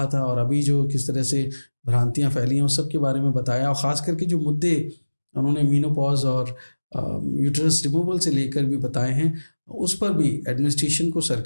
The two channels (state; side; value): inverted; both; correlation -1.00